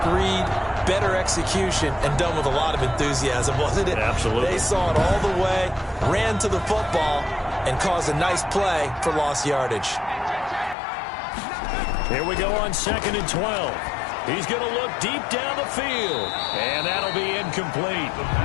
read, better execution, and done with a lot of enthusiasm, wasn't it? Absolutely. They saw it all the way, ran to the football, and caused a nice play for lost yardage. Here we go on 2nd and 12. He's going to look deep down the field, and that'll be incomplete.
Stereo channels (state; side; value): drops out; right; at 10.8 s